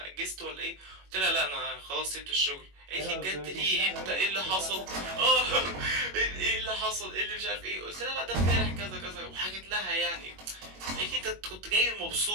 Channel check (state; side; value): late; left; 21 ms